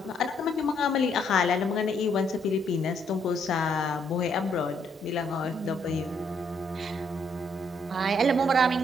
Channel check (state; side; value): normal; both; correlation 0.71